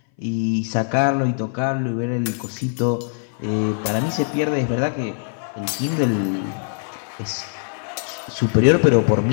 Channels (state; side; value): silent; right; 60 dB below the other